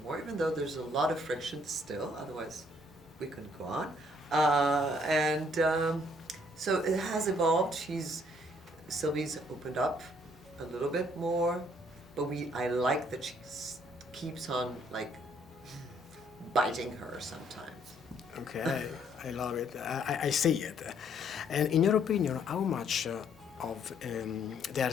more, even though there's a lot of friction still, otherwise we couldn't go on. So it has evolved. Sylvie's opened up a little bit more, but I like that she keeps on like biting her sometimes. Okay, I love it. I see it. And in your opinion, how much of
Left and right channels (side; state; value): both; normal; correlation 0.65